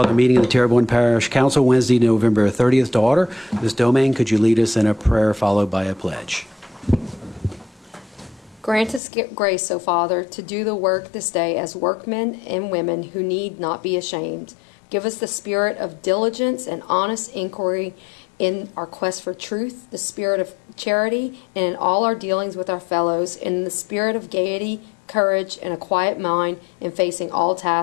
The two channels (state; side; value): drops out; right; at 9.0 s